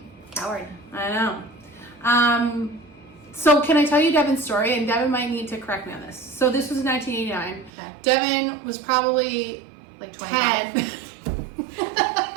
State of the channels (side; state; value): left; drops out; at 7.7 s